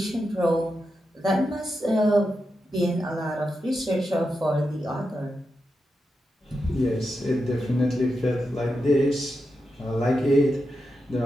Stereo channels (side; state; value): both; normal; correlation 0.88